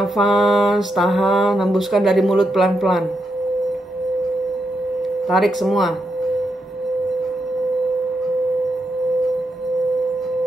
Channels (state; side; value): normal; both; correlation 0.83